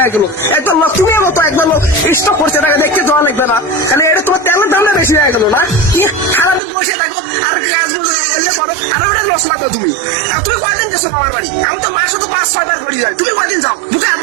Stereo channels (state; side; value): drops out; left; at 6.6 s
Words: গেল। একবার তুমি মতো একবার স্টক করছে, তাকে দেখতে যাওয়া লাগবে না, তাহলে এটা তোমার তেলের দামটা বেশি হয়ে গেল না? সারাদিন বসে থাকো আর কাজ করো, আর ওটা মশলা দাও তুমি। আর তুমি কয়দিন গেছো মামার বাড়ি? আমি তো মাসে তো 5-6 বার করি যাই, তুমি কয়দিন যাও? বুকে